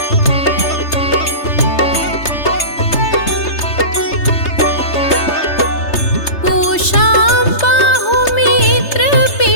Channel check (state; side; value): late; right; 3.3 ms